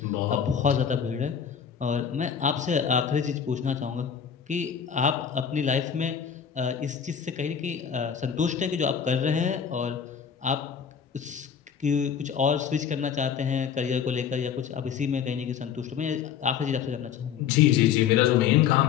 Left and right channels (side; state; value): right; quieter; 7.8 dB